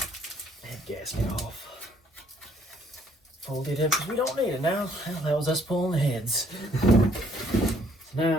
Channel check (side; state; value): both; normal; correlation 0.64